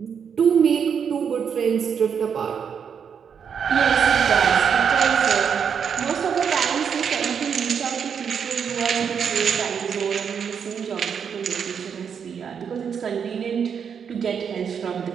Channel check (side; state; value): left; quieter; 7.2 dB